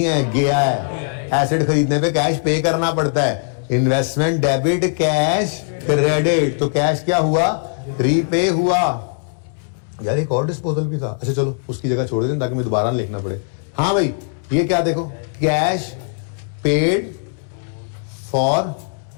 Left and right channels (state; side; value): silent; right; 66 dB below the other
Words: गया है। एसेट खरीदने पे कैश पे करना पड़ता है, इन्वेस्टमेंट डेबिट कैश क्रेडिट, तो कैश क्या हुआ? रीपे हुआ। यार एक और डिस्पोजल भी था, अच्छा चलो उसकी जगह छोड़ दें ताकि मैं दोबारा लिखना पड़े। हाँ भाई ये क्या देखो, cash paid for